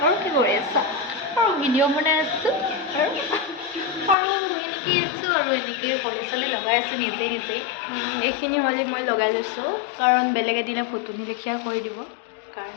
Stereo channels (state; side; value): drops out; right; at 4.2 s